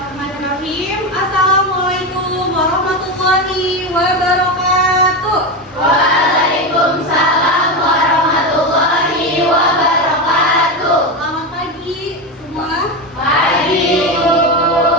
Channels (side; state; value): both; normal; correlation 0.16